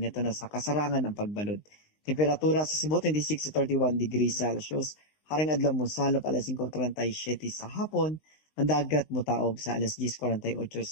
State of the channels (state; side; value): late; right; 19 ms